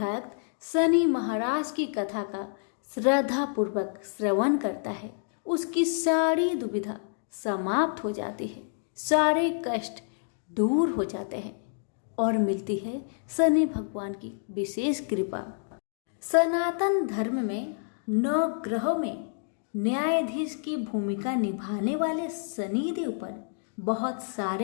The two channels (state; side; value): silent; right; digital silence